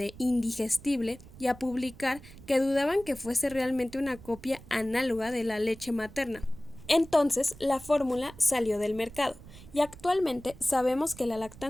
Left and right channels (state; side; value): noise; right; rumble, 19 dB below the sound